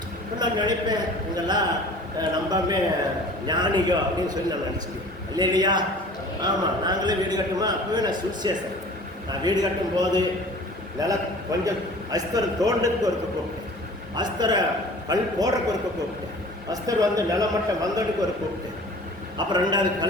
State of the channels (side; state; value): both; normal; correlation 0.45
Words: இப்போ நான் நினைப்பேன், இங்கெல்லாம் நம்பாமே ஞானிகோ அப்படின்னு சொல்லி நான் நினச்சிக்கிறேன் இல்லையா? ஆமாம், நாங்களே வீடு கட்டுமா, அப்போவே நான் சுவிசேஷன். நான் வீடு கட்டும் போது கொஞ்சம் அஸ்தரை தோண்டத்துக்கு ஒருக்க கூப்பிட்டேன், அஸ்தரை கல் போடுறதுக்கு ஒருக்க கூப்பிட்டேன், அஸ்தர் வந்து நிலமட்டம் வந்ததுக்கு ஒரு கூப்பிட்டு, அப்புறம் ரெண்டாவது